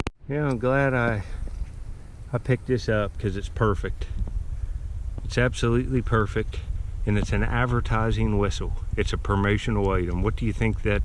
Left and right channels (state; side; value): identical; both; correlation 1.00